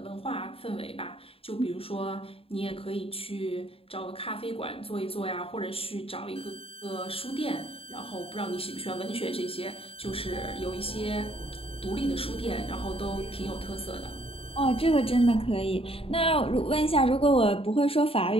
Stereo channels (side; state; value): right; late; 0.27 ms